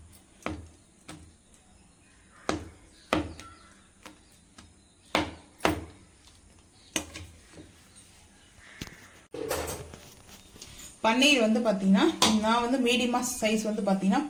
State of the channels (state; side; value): identical; both; correlation 1.00